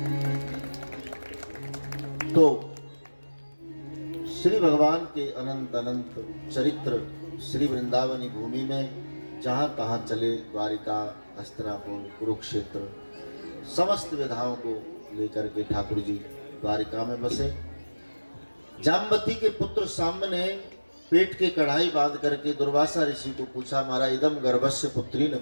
श्री भगवान के अनंत अनंत चरित्र श्री वृंदावनी भूमि में जहाँ कहाँ चले, द्वारिका, हस्तिनापुर, कुरुक्षेत्र, समस्त विधाओं को लेकर के ठाकुर जी द्वारिका में बसे। जाम्बती के पुत्र साम्ब ने पेट के कढ़ाई बांध करके दुर्वासा ऋषि को पूछा, मारा इदम गर्भस्य पुत्री न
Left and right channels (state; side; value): inverted; both; correlation -1.00